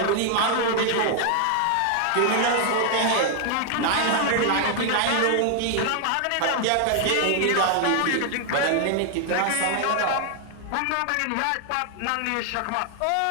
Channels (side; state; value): both; different; correlation 0.00